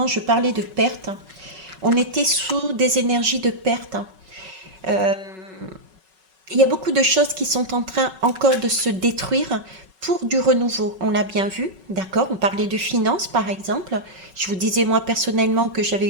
je parlais de perte. On était sous des énergies de perte. Il y a beaucoup de choses qui sont en train encore de se détruire pour du renouveau. On l'a bien vu, d'accord? On parlait de finances, par exemple. Je vous disais, moi, personnellement, que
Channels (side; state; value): left; late; 5.3 ms